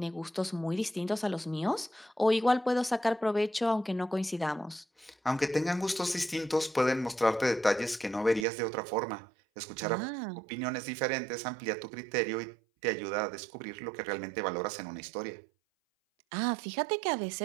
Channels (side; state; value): left; drops out; at 8.5 s